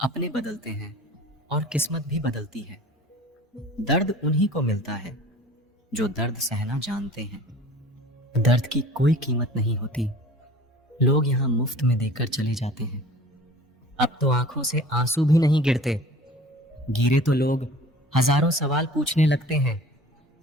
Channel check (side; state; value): both; normal; correlation 0.45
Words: बदलते हैं और किस्मत भी बदलती है। दर्द उन्हीं को मिलता है जो दर्द सहना जानते हैं। दर्द की कोई कीमत नहीं होती, लोग यहाँ मुफ्त में देकर चले जाते हैं। अब तो आंखों से आंसू भी नहीं गिरते, गिरे तो लोग हजारों सवाल पूछने लगते हैं,